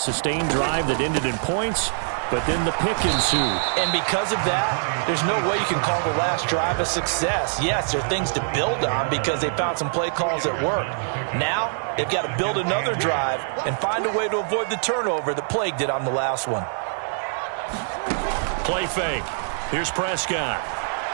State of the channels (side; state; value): left; silent; digital silence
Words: drive that ended in points, but then the pick ensued. And because of that, there's no way you can call the last drive a success. Yes, there are things to build on because they found some play calls that worked. Now, they've got to build another drive and find a way to avoid the turnover that plagued it on the last one. Play fake. Here's Prescott.